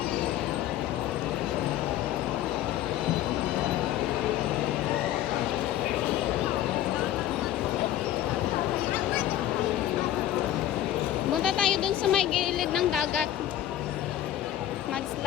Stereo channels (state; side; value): quieter; right; 12.5 dB